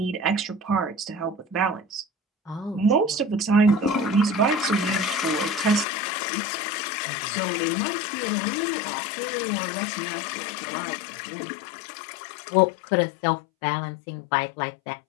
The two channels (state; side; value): drops out; right; at 5.9 s